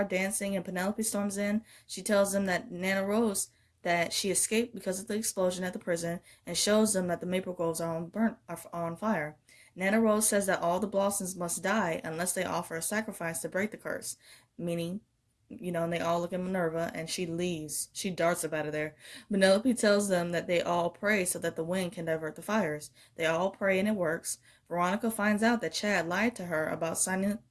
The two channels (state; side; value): identical; both; correlation 1.00